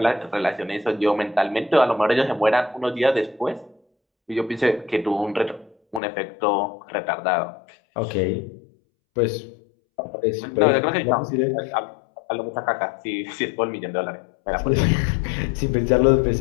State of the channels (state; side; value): drops out; right; at 6.0 s